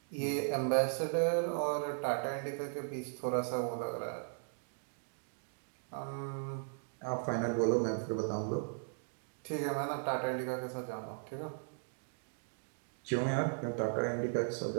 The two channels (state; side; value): silent; left; digital silence